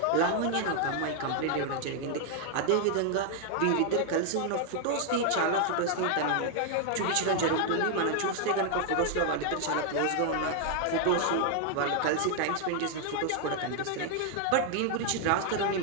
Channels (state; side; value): different; both; correlation 0.00